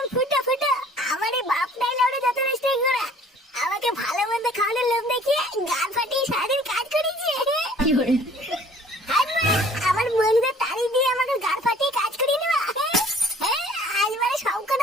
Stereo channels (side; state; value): both; normal; correlation 0.53